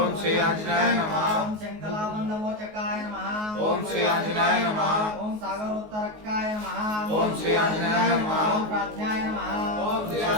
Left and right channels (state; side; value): late; left; 19 ms